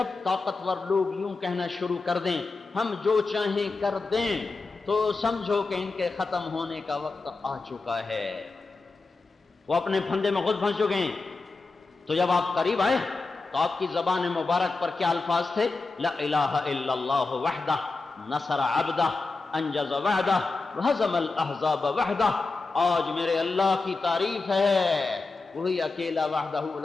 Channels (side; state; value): right; quieter; 3.8 dB